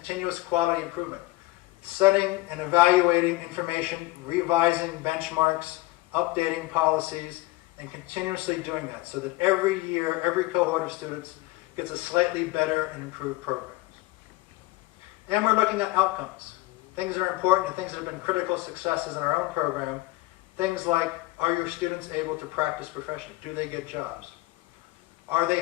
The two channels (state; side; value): quieter; right; 19.9 dB